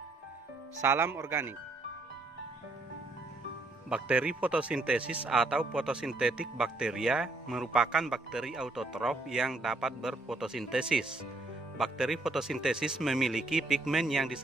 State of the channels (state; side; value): quieter; left; 3.0 dB